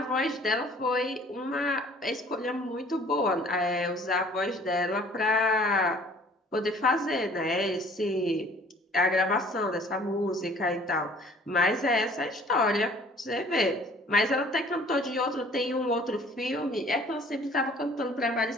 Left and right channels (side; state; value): both; normal; correlation 0.53